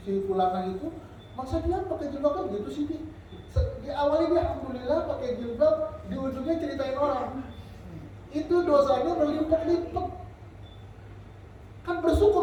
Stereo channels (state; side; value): identical; both; correlation 1.00